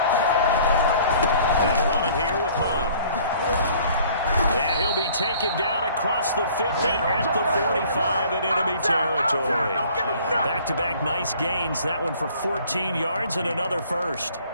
Taken down across the 50 at the 45 in enemy territory. Back-to-back nice gains. That one for 14 yards and another first.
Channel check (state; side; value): inverted; both; correlation -0.54